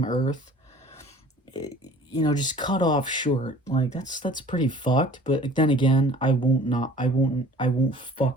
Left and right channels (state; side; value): normal; both; correlation 0.49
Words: earth. You know, just cut off short. Like, that's pretty fucked. But then again, I won't